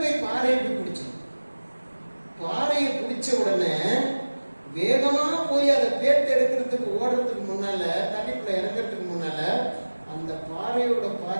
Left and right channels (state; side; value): inverted; both; correlation -1.00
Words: போய் பாறையை போய் பிடிச்சிடும். பாறையை பிடிச்ச உடனே வேகமா போய் அதை பேத்து எடுக்கிறதுக்கு ஓடுறதுக்கு முன்னால, தண்ணிக்குள்ள இறங்குறதுக்கு முன்னால அந்த பாறையோட